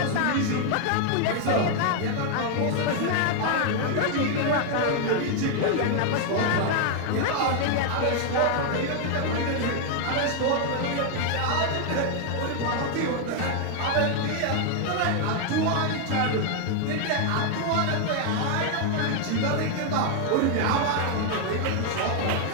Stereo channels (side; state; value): both; different; correlation 0.00